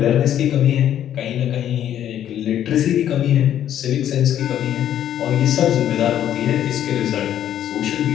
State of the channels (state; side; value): quieter; right; 10.7 dB